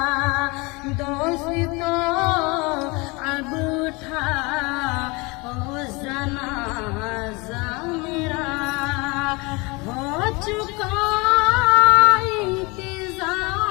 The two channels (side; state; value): right; quieter; 26.5 dB